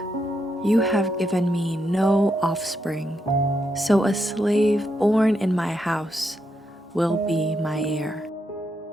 you have given me no offspring, so a slave born in my house will be my heir.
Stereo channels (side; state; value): both; normal; correlation 0.81